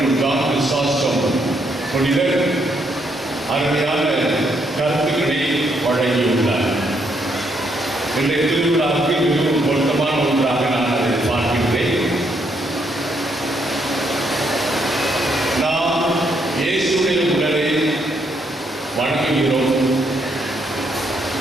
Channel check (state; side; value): normal; both; correlation 0.74